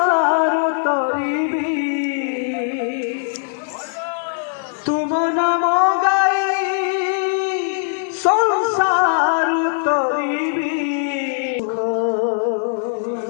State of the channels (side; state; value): right; silent; digital silence